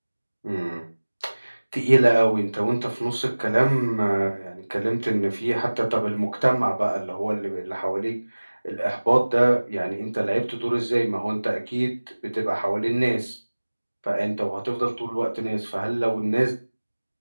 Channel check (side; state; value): both; inverted; correlation -1.00